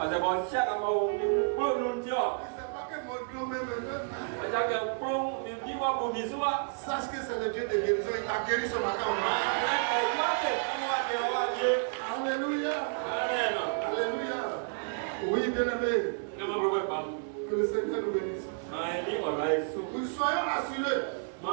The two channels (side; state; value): left; silent; digital silence